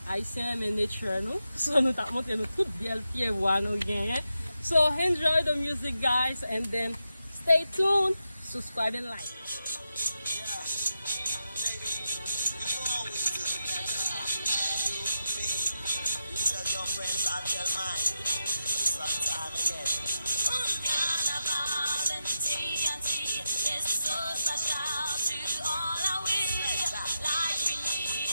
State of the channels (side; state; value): both; inverted; correlation -0.87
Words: Haitien mais nature nous. So nous t'a montré nous toute belle pied voix nous gagner. So enjoy the music guys and then stay tuned, subscribe and like.